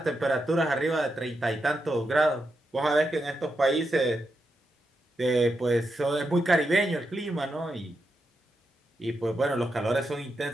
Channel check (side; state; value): both; normal; correlation 0.85